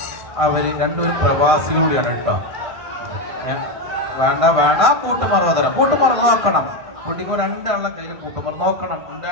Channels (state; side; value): late; left; 1.6 ms